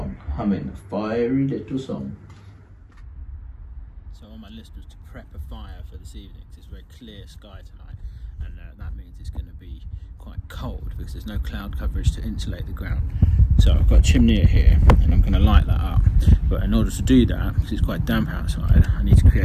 humming a fiery little song. So on my list was to prep a fire for this evening, because it's very clear sky tonight, and that means it's going to be quite cold because there's no cloud coverage to insulate the ground. So I've got a chimney here and I'm going to light that up, but in order to do that, because it's quite damp outside, I need to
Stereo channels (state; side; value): identical; both; correlation 1.00